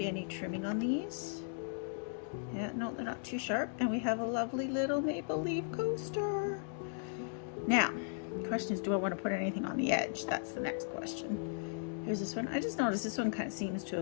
any trimming on these. Yeah, no, they're not too sharp. And we have a lovely little maple leaf coaster. Now, the question is, do I want to put anything on the edge? That's the next question. Here's this one. I just noticed this one kind of seems to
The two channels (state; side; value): silent; right; digital silence